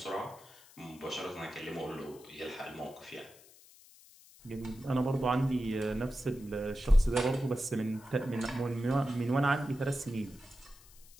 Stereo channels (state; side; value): noise; left; hiss, 23 dB below the sound